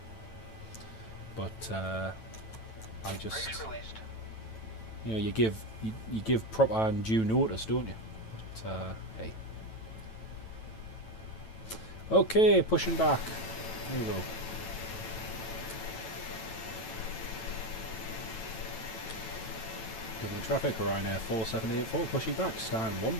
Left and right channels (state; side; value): late; right; 9.1 ms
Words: But I just, Race released. you know, you give proper and due notice, don't you? But hey. Okay, pushing back. There we go. Dublin traffic, Ryanair 4784, pushing back, stand